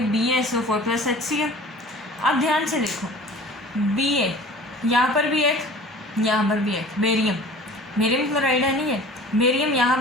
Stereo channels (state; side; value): normal; both; correlation 0.44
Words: BaSO4 plus HCl। अब ध्यान से देखो, Ba यहाँ पर भी एक, यहाँ पर भी एक, बेरियम, बेरियम क्लोराइड है नहीं है, बेरियम यहाँ